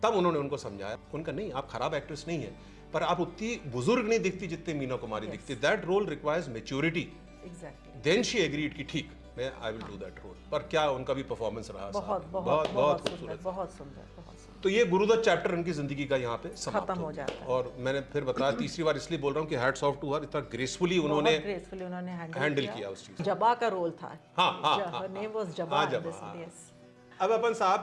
तब उन्होंने उनको समझाया, उनका नहीं, आप खराब एक्ट्रेस नहीं है, पर आप उतनी बुजुर्ग नहीं दिखती जितनी मीना कुमारी दिखती। That role requires maturity. Then she agreed कि ठीक, मैं I will do that role. पर क्या उनका भी परफॉर्मेंस रहा, बहुत खूबसूरत, बहुत सुंदर। तो ये गुरुदत्त चैप्टर उनकी जिंदगी का यहाँ पे समाप्त हो जाता है। और मैंने फिर बताया, तीसरी बार इसलिए बोल रहा हूँ कि हैट्स ऑफ टू हर, इतना ग्रेसफुली उन्होंने हैंडल किया उस चीज। जबा का रोल था। जबा। अब अपन साहब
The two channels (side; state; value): both; identical; correlation 1.00